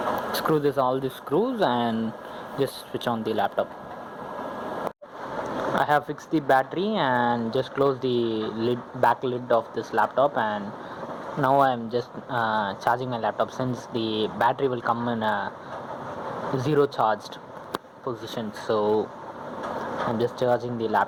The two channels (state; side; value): identical; both; correlation 1.00